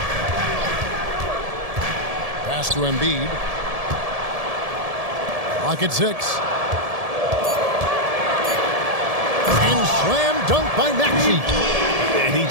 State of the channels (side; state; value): left; late; 1.7 ms